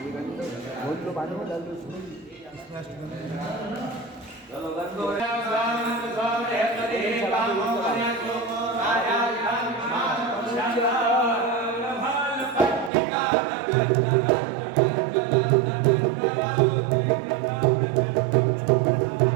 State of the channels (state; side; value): drops out; left; at 12.9 s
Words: ये गंध बहुत लो, पानी में डाल दो इसमें।